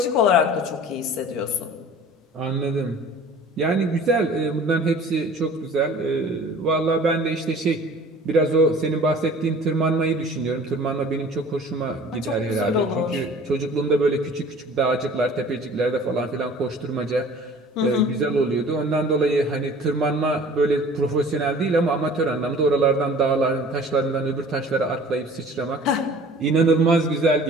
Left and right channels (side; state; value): both; normal; correlation 0.46